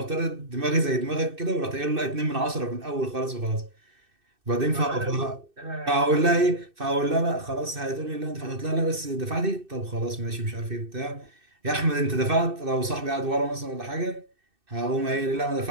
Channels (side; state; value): left; late; 2.6 ms